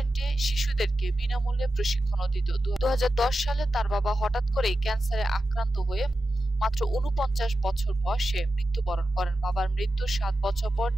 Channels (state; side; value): normal; both; correlation 0.91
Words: শিশুদেরকে বিনামূল্যে প্রশিক্ষণও দিত। ২০১০ সালে তার বাবা হঠাৎ করেই ক্যান্সারে আক্রান্ত হয়ে মাত্র ৪৯ বছর বয়সে মৃত্যুবরণ করেন। বাবার মৃত্যুর ৭ বছর পর